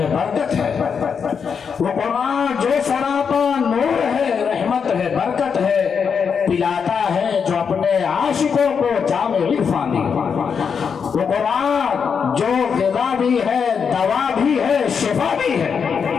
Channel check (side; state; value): right; quieter; 6.4 dB